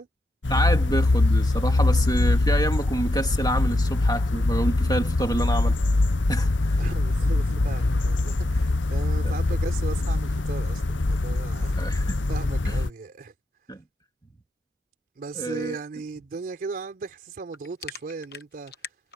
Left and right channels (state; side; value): normal; both; correlation 0.85